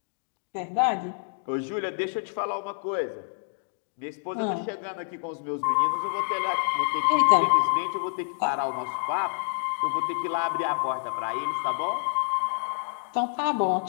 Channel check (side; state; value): right; silent; digital silence